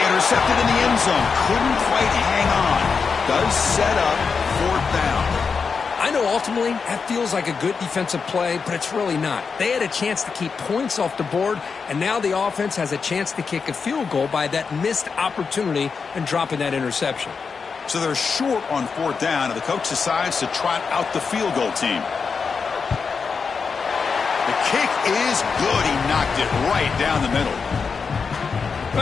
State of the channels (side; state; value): right; quieter; 5.4 dB